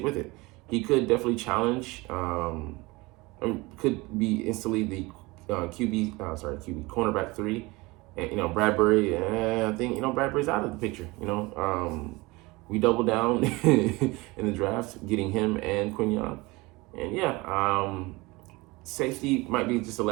with it. He could definitely challenge, could be instantly the cornerback 3. And, Bradbury, I think, Bradbury's out of the picture, We doubled down in the draft, getting him and Quignon. And, yeah, safety might be just a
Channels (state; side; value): quieter; left; 23.1 dB